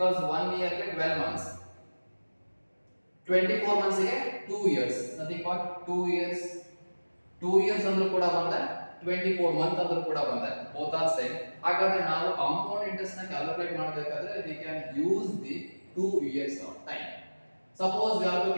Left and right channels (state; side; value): inverted; both; correlation -1.00